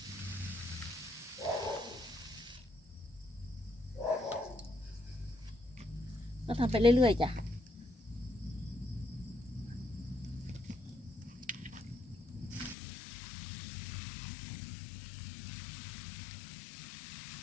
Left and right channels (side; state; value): right; drops out; at 12.8 s